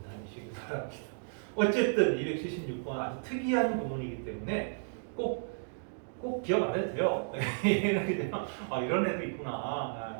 다니시기 바랍니다. 어쨌든 276번 아주 특이한 구문이기 때문에 꼭 기억 안 해도 돼요. 얘는 그냥 이런 애도 있구나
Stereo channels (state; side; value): silent; left; digital silence